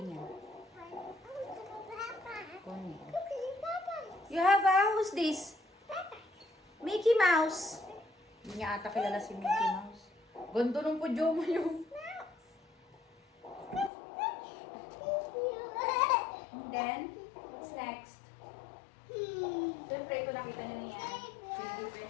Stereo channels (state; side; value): drops out; right; at 13.9 s